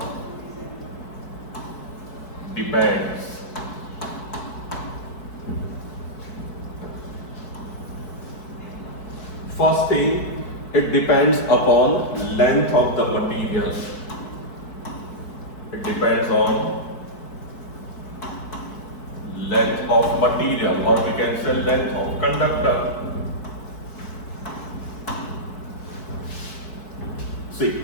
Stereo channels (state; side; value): late; right; 4.6 ms